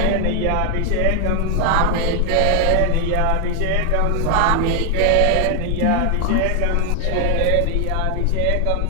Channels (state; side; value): different; both; correlation 0.00